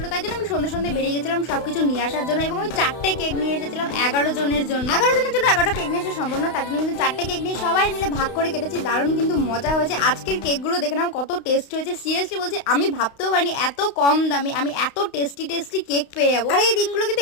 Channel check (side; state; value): right; late; 32 ms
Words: তাই জন্য আমি সন্ধ্যে সন্ধ্যে বেরিয়ে গেছিলাম সবকিছু নিয়ে আসার জন্য। এবং আমি 4টে কেক নিয়ে এসেছিলাম 11 জনের জন্য। 11টা কেক নিয়ে আসা সম্ভব না, তার জন্য কিন্তু 4টে কেক নিয়ে সবাই মিলে ভাগ করে কেটেছি। দারুণ কিন্তু মজা হয়েছে। আজকের কেকগুলো দেখে নাও কত টেস্ট হয়েছে। সিরিয়াসলি বলছি, আমি ভাবতেও পারিনি এত কম দামে আমি এত টেস্টি কেক পেয়ে যাবো। আর এই দিনগুলো কিন্তু